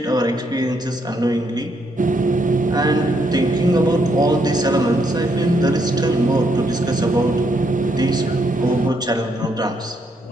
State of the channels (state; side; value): normal; both; correlation 0.75